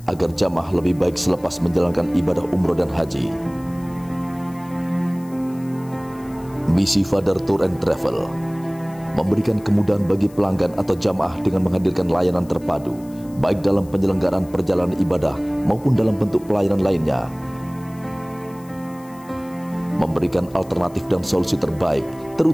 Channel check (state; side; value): noise; left; hiss, 25 dB below the sound